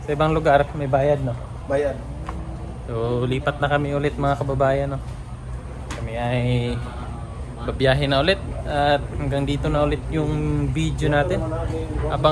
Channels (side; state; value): both; identical; correlation 1.00